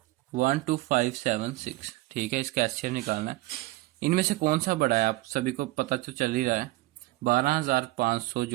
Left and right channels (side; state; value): left; quieter; 19.2 dB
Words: 12576, ठीक है, इसका HCF निकालना है। इनमें से कौन सा बड़ा है, आप सभी को पता तो चल ही रहा है, 12500